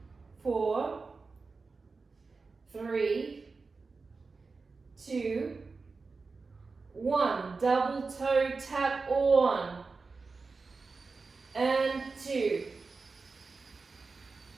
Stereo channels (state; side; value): quieter; left; 4.2 dB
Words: 4. 3. 2. 1. Double toe tap. 1. And 2.